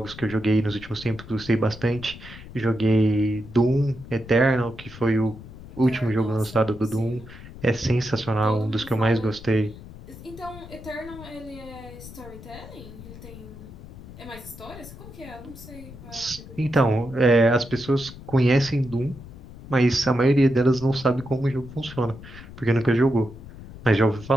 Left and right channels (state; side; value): noise; left; rumble, 16 dB below the sound